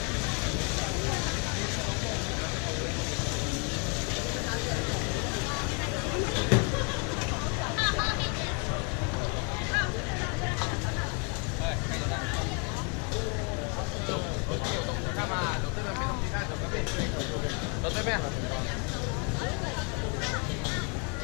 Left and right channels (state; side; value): quieter; right; 34.6 dB